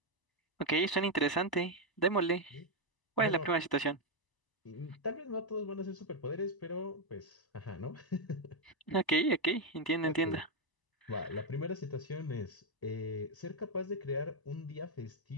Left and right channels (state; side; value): late; right; 1.0 ms